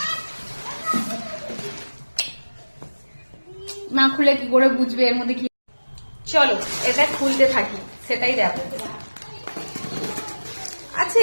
না খুলে কি করে বুঝবে এর মধ্যে কি। চলো এটা খুলতে থাকি, সেটাই দেখো। আছে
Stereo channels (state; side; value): inverted; both; correlation -1.00